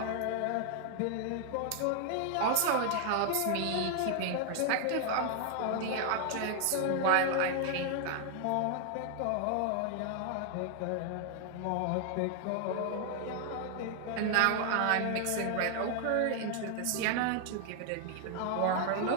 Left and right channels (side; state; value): both; different; correlation 0.00